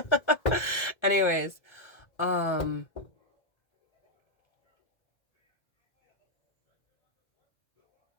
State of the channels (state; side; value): late; right; 1.3 ms